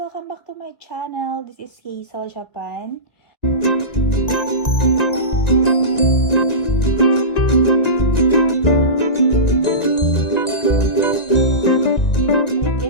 back to my channel. This is Hazel Japan.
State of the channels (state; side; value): late; right; 1.9 ms